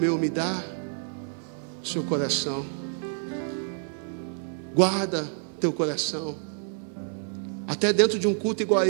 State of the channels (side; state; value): left; silent; 60 dB below the other